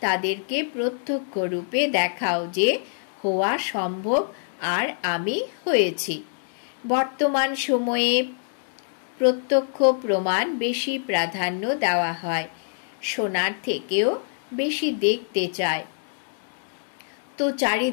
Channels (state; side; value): silent; right; 62 dB below the other